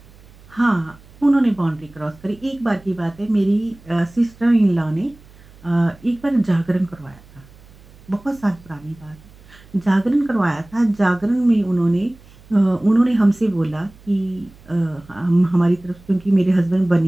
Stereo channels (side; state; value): right; noise; hum, 24 dB below the sound